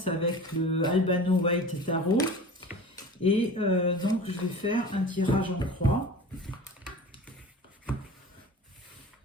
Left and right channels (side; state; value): both; normal; correlation 0.37